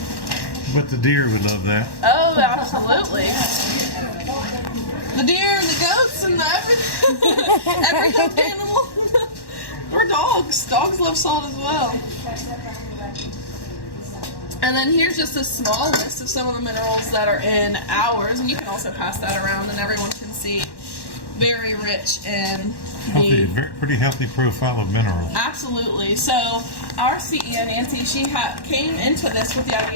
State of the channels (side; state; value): right; late; 1.1 ms